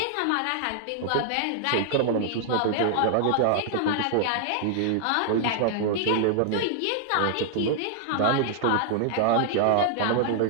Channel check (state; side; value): different; both; correlation -0.01